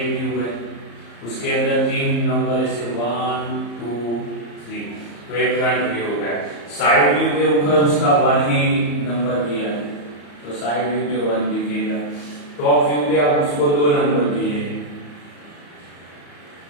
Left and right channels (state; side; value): late; right; 34 ms